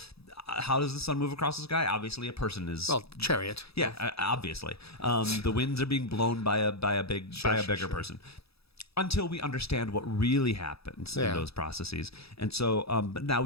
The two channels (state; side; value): late; right; 0.77 ms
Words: how does the sun move across the sky? Obviously, a person is chariot. Yeah, obviously, the winds are being blown by a bigger person. Until we understand what really happens in those processes. And so, but now